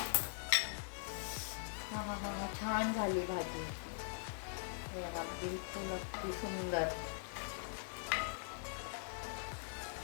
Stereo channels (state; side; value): silent; right; digital silence